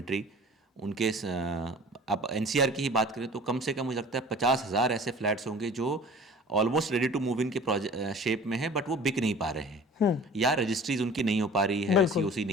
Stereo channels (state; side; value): normal; both; correlation 0.44